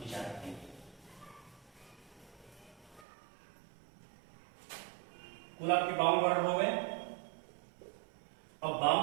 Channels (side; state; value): left; drops out; at 3.1 s